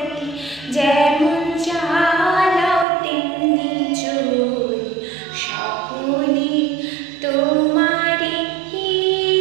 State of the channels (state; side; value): drops out; left; at 2.9 s